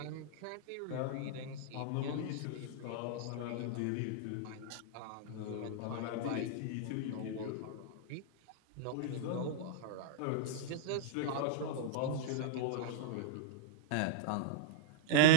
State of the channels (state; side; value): different; both; correlation 0.01